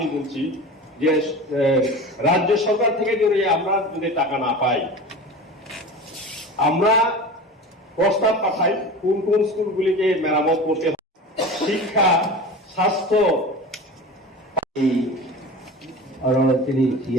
বলছি যে রাজ্য সরকার থেকে যদি আমরা যদি টাকা না পাই, আমরা প্রস্তাব পাঠাই কোন কোন স্কুলগুলিকে মেরামত করতে হবে, শিক্ষা, স্বাস্থ্য। তিনি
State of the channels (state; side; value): normal; both; correlation 0.33